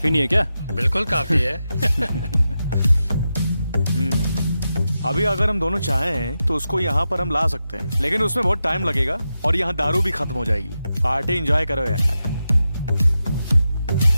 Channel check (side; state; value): both; inverted; correlation -0.89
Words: नहीं है क्या? बिल्कुल काफी है। अभी अगर हम दोनों चाहें तो उसको यहाँ पर हम ला सकते हैं, लेकिन उसमें बहुत टाइम लगेगा और यहाँ दारू भी खत्म हो जाएगी। पार्टी एंजॉय करो यार।